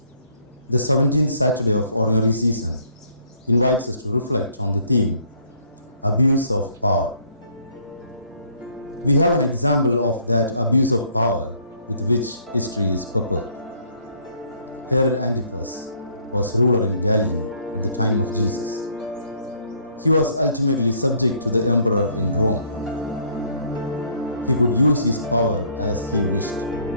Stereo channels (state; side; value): inverted; both; correlation -0.63